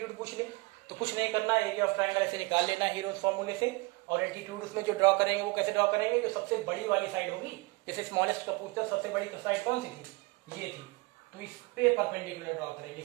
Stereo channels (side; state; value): left; quieter; 24.6 dB